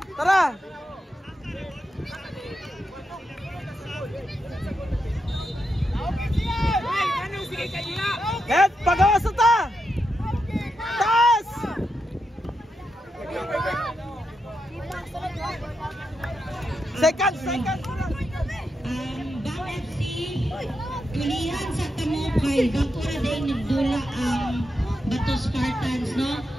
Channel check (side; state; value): both; normal; correlation 0.85